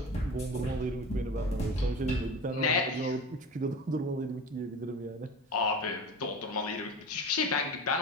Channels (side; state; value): both; normal; correlation 0.32